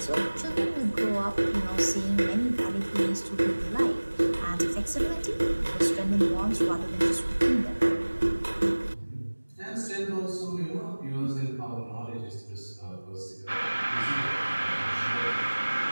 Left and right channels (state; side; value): inverted; both; correlation -1.00